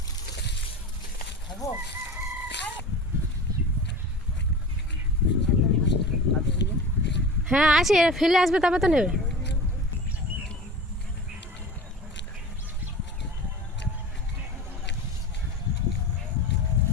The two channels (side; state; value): both; normal; correlation 0.34